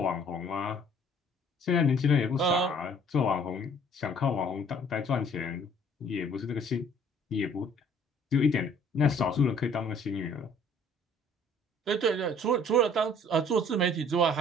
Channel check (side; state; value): both; normal; correlation 0.56